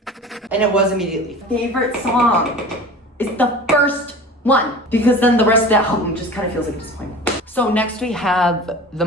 And it was immediately. Favorite song is the first one, because then the rest of the album just kind of feels like a disappointment. So next we have The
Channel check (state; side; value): normal; both; correlation 0.38